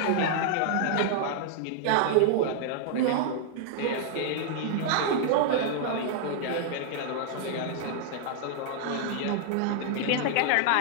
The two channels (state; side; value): different; both; correlation 0.00